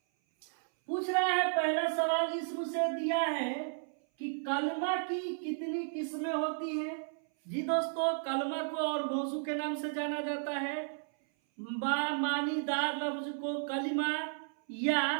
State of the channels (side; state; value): left; silent; 55 dB below the other